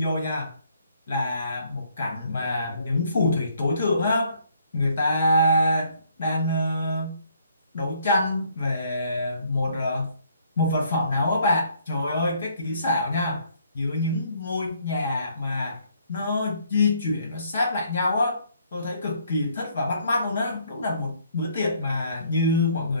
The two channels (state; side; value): inverted; both; correlation -0.65